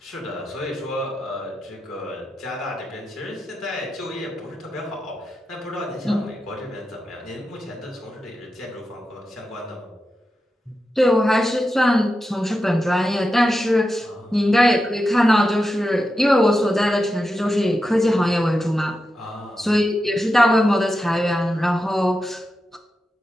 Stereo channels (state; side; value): normal; both; correlation 0.89